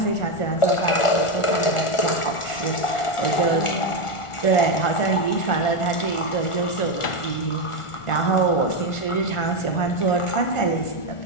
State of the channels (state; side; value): late; right; 1.4 ms